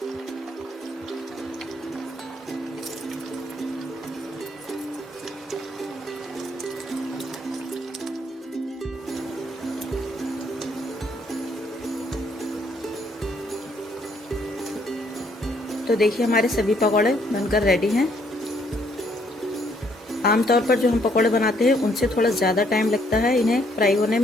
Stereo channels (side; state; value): both; normal; correlation 0.68